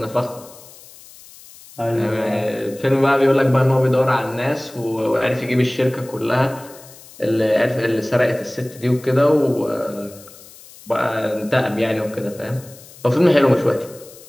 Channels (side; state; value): left; noise; hiss, 21 dB below the sound